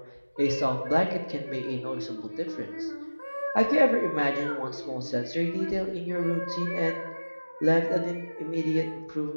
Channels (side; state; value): both; inverted; correlation -1.00